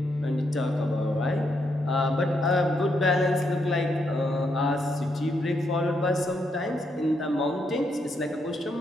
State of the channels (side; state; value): both; normal; correlation 0.78